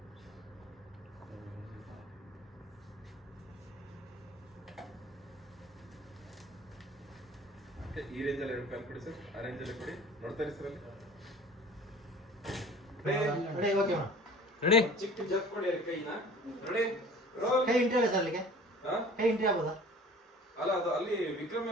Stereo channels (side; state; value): both; normal; correlation 0.45